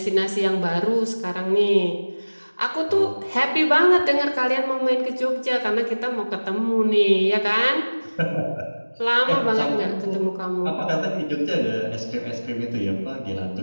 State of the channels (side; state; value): both; inverted; correlation -1.00